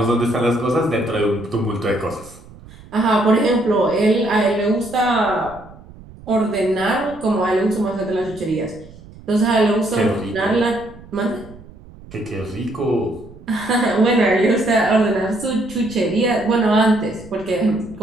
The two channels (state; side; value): noise; right; rumble, 20 dB below the sound